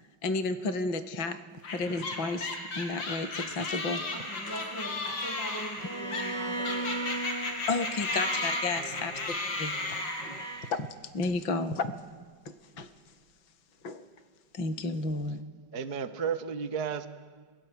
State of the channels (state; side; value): late; right; 5.3 ms